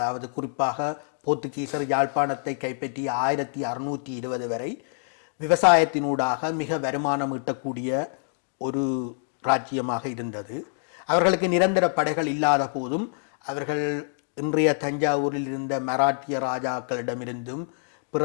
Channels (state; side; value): silent; right; digital silence